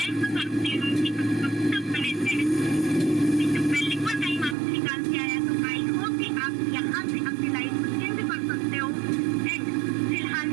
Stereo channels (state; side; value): drops out; left; at 4.5 s